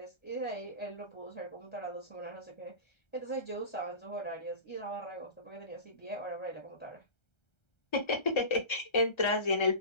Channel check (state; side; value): late; right; 1.3 ms